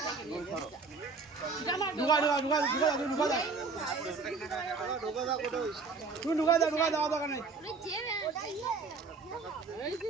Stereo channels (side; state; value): left; quieter; 4.4 dB